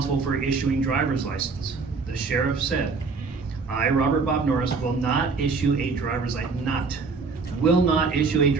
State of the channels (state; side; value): quieter; left; 4.5 dB